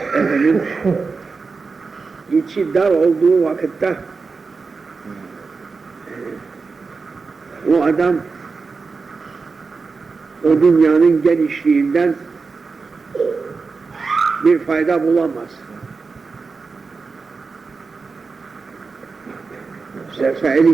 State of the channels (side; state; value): left; quieter; 4.5 dB